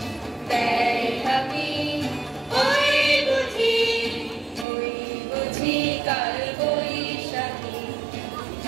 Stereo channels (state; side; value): drops out; left; at 4.7 s